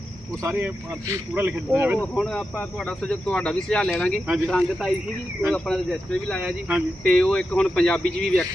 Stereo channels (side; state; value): both; normal; correlation 0.89